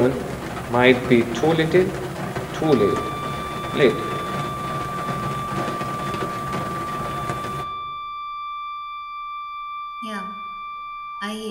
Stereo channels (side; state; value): both; identical; correlation 1.00